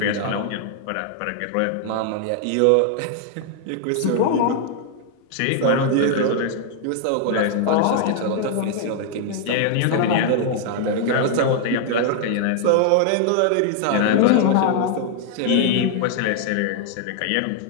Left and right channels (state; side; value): different; both; correlation 0.00